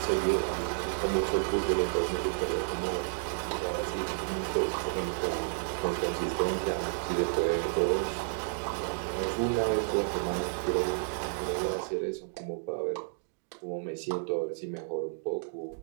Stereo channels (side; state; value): left; silent; digital silence